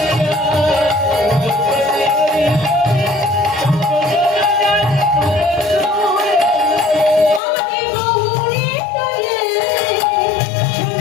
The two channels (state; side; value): drops out; right; at 7.4 s